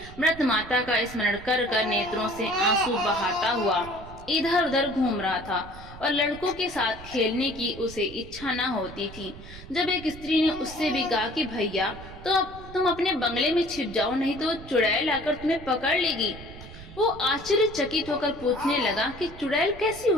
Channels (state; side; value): noise; right; rumble, 16 dB below the sound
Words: मृत माता का स्मरण कर कर नेत्रों से आंसू बहाता हुआ इधर उधर घूम रहा था और लड़कों के साथ खेलने की उसे इच्छा न होती थी। जब एक स्त्री ने उससे भी कहा कि भैया तो तुम अपने बंगले में छिप जाओ, नहीं तो चुड़ैल आकर तुम्हें पकड़ लेगी। वो आश्चर्यचकित होकर पूछने लगा कि चुड़ैल कैसी